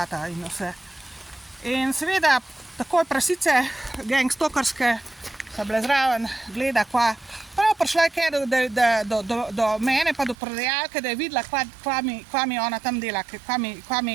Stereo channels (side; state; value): left; drops out; at 10.4 s